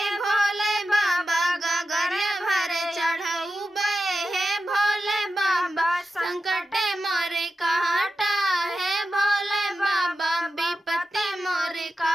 भोले बाबा, गगरिया भरे चढ़ऊबे हे भोले बाबा। संकट मोरे काटा है भोले बाबा, विपत्ति मोरे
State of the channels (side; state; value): both; normal; correlation 0.91